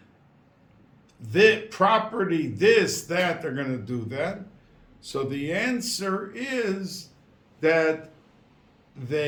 the property, this, that. They're going to do that. So the answer is that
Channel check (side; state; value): both; identical; correlation 1.00